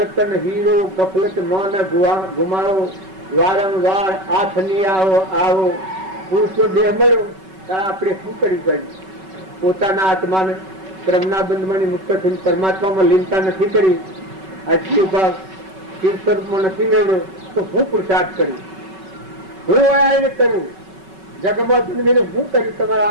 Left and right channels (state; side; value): late; left; 5.3 ms